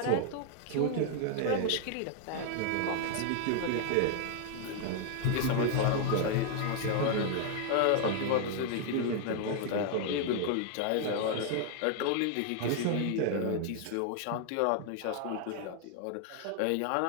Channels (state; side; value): different; both; correlation 0.00